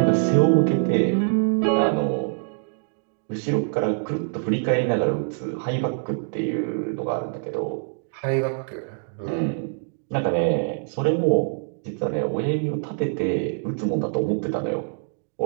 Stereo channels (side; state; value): left; silent; digital silence